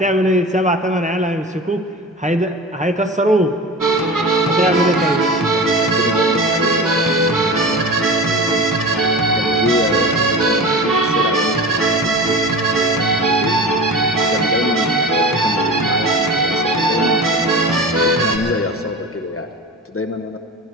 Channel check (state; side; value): normal; both; correlation 0.32